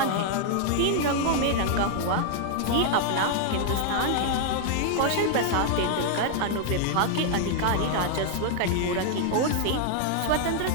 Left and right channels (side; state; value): both; different; correlation 0.00